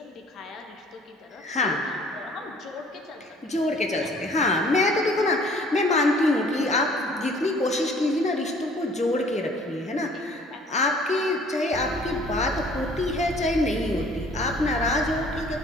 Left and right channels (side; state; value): both; normal; correlation 0.55